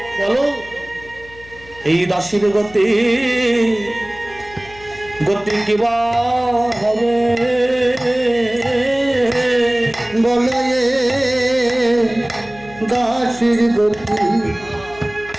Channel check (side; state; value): left; noise; hum, 21 dB below the sound